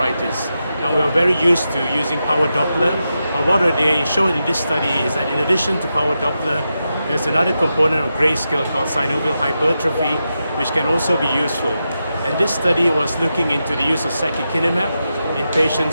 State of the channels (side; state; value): both; inverted; correlation -0.88